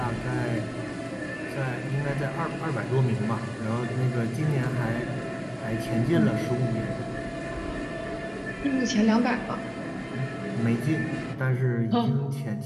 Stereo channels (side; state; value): both; identical; correlation 1.00